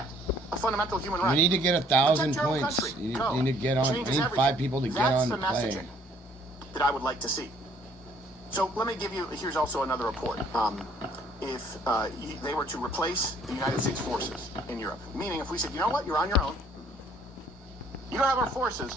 a fundamental human right. You need to get 1,000 points. You need to get on. I need 5 people to get on the play. That's the messaging that I would like to see. So let me give you, here's also another report. If they were to replace the United States forces in Europe, meaning if we said, you know what, you're on your own, you don't have our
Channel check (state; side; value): normal; both; correlation 0.60